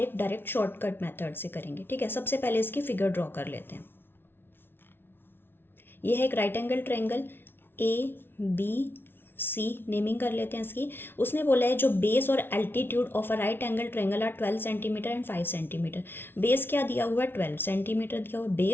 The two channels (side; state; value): right; late; 0.11 ms